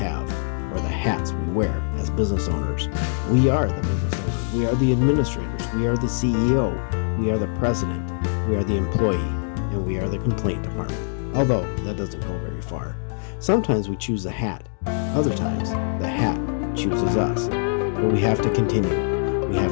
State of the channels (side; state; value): right; silent; digital silence